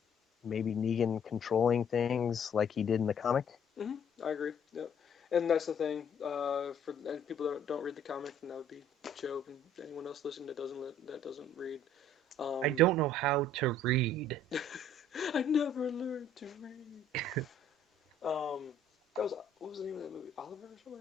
maybe Negan controlling things like he did in the comic. Mm-hmm. I agree. Yep. And that's the thing. For and people that don't read the comic, and that would be Joe and anyone else listening that doesn't read. I Um, don't know how to read. I never learned to read. Um, that was what was the name of that movie? Oliver or something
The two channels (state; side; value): normal; both; correlation 0.59